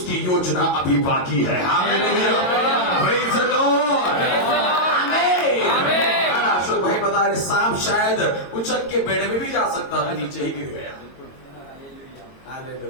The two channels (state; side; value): late; right; 22 ms